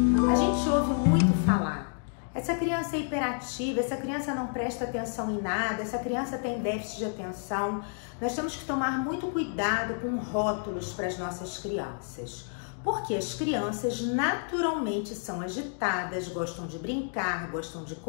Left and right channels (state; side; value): silent; right; 58 dB below the other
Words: A gente ouve muito falar: essa criança é hiperativa, essa criança não presta atenção em nada, essa criança tem déficit de atenção. Nós temos que tomar muito cuidado com rótulos para as nossas crianças, porque as crianças naturalmente são agitadas, gostam de brincar, gostam de